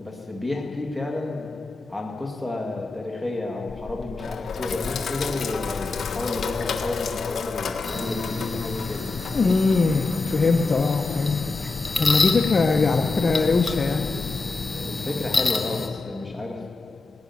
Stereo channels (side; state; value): right; quieter; 3.5 dB